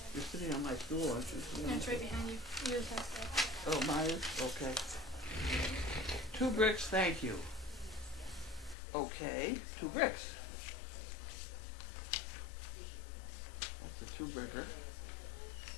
You're sitting on my stool, aren't you? No, it's right behind you. Yours has that. Oh, mine? Okay. 2 bricks, thank you. Okay, 2 bricks. That's a 2-bricker.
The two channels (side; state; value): right; drops out; at 8.8 s